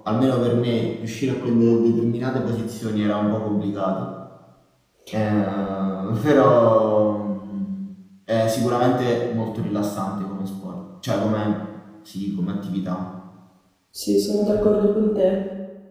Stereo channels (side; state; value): both; identical; correlation 1.00